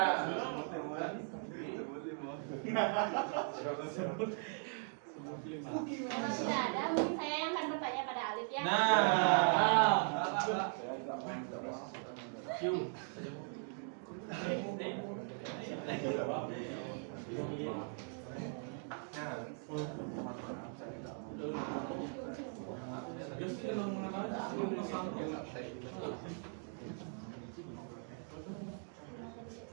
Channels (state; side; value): silent; left; 51 dB below the other